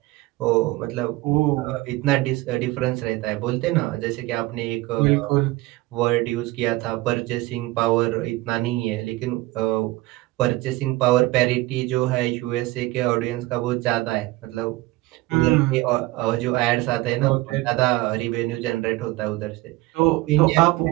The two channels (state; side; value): quieter; left; 19.5 dB